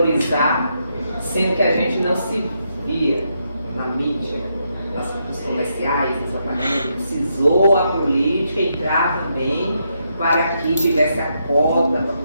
sendo que a gente não se via na mídia, nos comerciais, nos apartamentos. Precisou a política entrar também para que tivesse a cota, para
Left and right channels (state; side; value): inverted; both; correlation -0.79